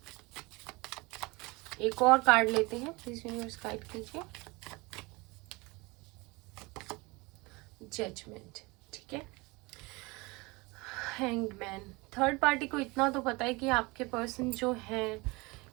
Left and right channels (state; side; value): quieter; left; 24.8 dB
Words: एक और कार्ड लेते हैं, प्लीज यूनिवर्स गाइड कीजिए। जजमेंट, ठीक है। हैंग्ड मैन, थर्ड पार्टी को इतना तो पता है कि आपके पर्सन जो है